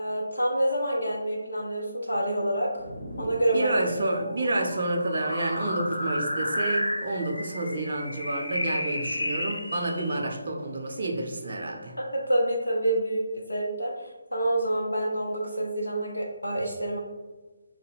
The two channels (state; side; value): inverted; both; correlation -0.83